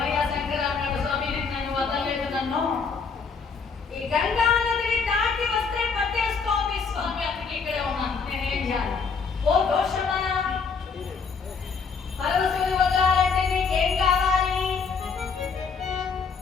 శంకర అన్నాడు, స్వామి నన్ను వదలలేదు, నన్ను ఈ గంగా నదిని దాటి వస్తే పట్టేస్తోంది స్వామి, అందుకే ఇక్కడే ఉన్నాను, నేనేం చేయాలి? ఓ దోషమా, పరమశివుని వదలాలంటే నీకేం కావాలి?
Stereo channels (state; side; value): quieter; right; 5.3 dB